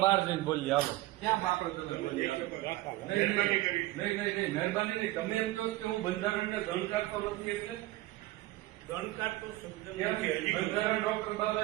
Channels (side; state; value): left; quieter; 18.0 dB